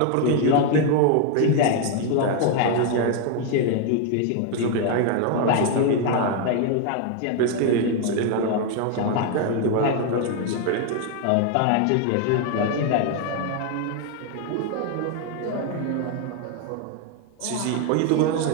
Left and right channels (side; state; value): both; different; correlation 0.01